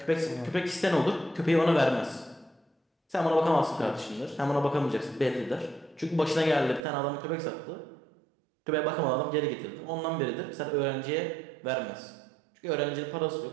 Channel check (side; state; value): left; drops out; at 6.8 s